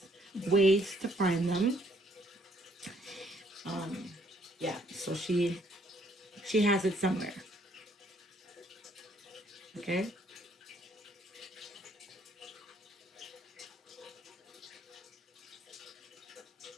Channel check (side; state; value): both; normal; correlation 0.66